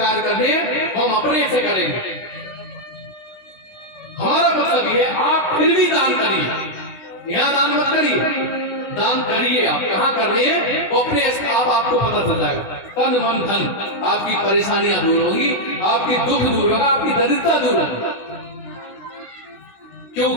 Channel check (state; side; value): late; right; 16 ms